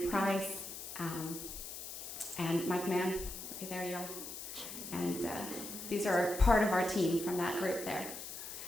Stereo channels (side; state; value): left; noise; hiss, 9 dB below the sound